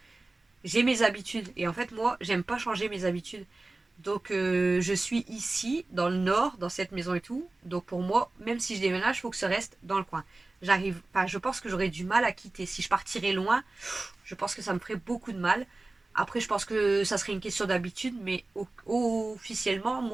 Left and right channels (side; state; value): left; quieter; 3.1 dB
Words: j'ai mes habitudes. Et en fait, moi, j'aime pas changer mes habitudes. Donc, je suis ici, dans le nord, dans cette maison et tout. Donc, pour moi, même si je déménage, il faut que ça reste dans le coin. J'arrive, enfin, je pense que j'aurais du mal à quitter. Si je partirais loin, je pense que ça me ferait beaucoup de mal. Après, je pense que ça serait une question d'habitude, mais officiellement,